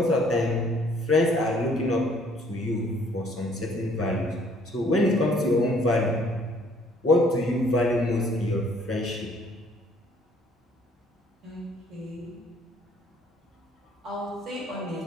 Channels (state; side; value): normal; both; correlation 0.61